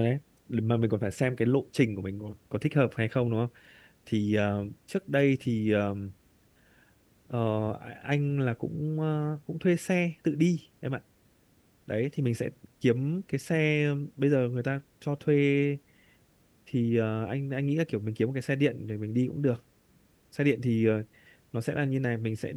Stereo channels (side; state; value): both; identical; correlation 1.00